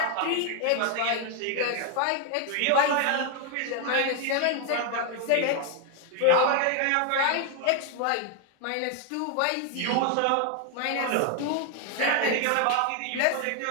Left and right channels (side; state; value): both; different; correlation 0.01